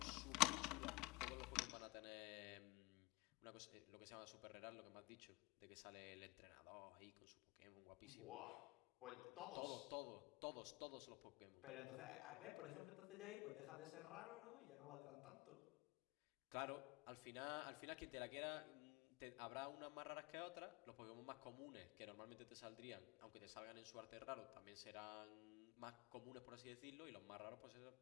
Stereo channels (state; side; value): quieter; right; 23.8 dB